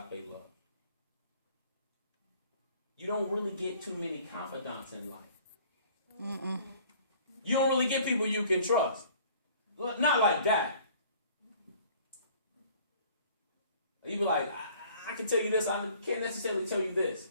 love. You don't really get too many confidants in life. Mm-mm. You don't really get people you can trust. Not like that. You be like, I can tell you this, I can't necessarily tell you this.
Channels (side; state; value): both; inverted; correlation -0.53